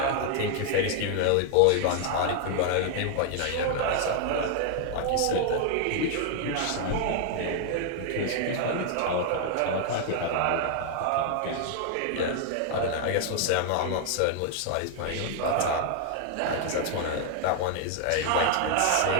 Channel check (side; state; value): both; different; correlation 0.00